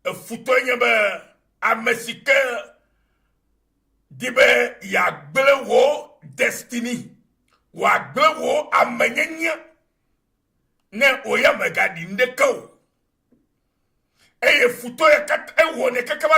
e futo nyebe amesike dibe ya gble wo destiny wa gble wo amenyenya ne oya megadi ndeko eye futo ya kat ewo ne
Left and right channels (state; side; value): identical; both; correlation 1.00